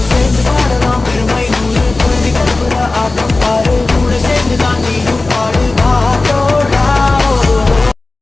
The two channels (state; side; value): quieter; right; 3.3 dB